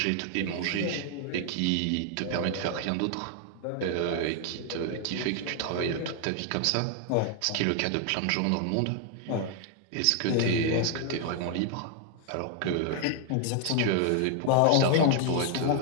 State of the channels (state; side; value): different; both; correlation 0.00